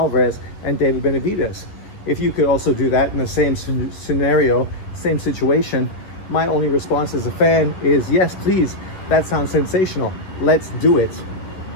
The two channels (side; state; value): right; late; 10 ms